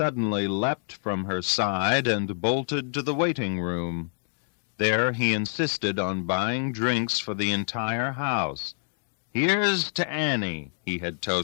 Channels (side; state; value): right; silent; digital silence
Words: leapt from her side and bolted to the waiting room. There he insisted on buying drinks for the entire house. "Here's to Annie," he had